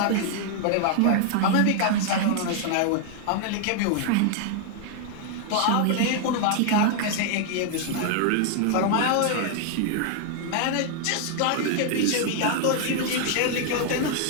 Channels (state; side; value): different; both; correlation 0.00